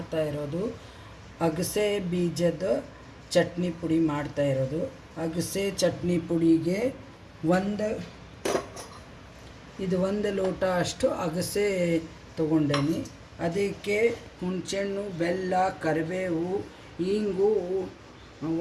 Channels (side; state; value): both; identical; correlation 1.00